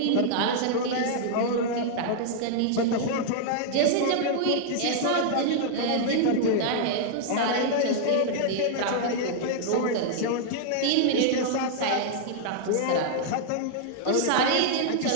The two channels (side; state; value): both; different; correlation -0.01